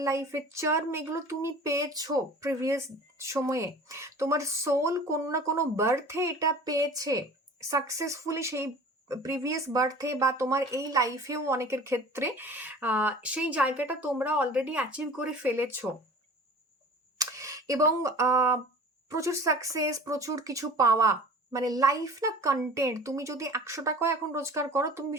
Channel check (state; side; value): normal; both; correlation 0.43